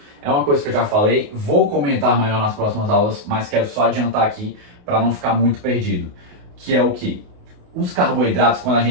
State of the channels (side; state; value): left; late; 28 ms